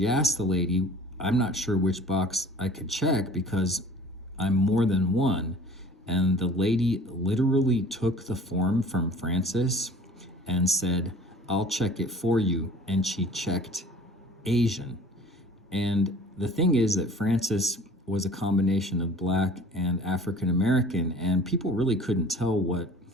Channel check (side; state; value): both; normal; correlation 0.48